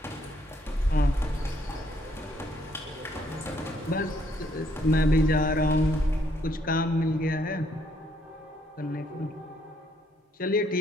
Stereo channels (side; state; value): both; normal; correlation 0.69